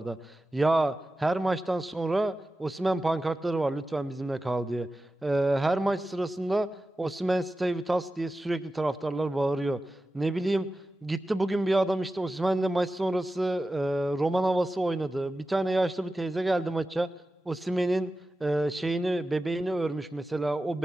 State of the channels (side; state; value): both; normal; correlation 0.93